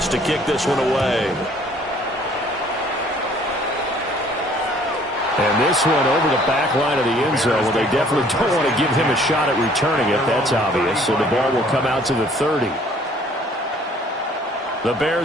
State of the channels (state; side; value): normal; both; correlation 0.57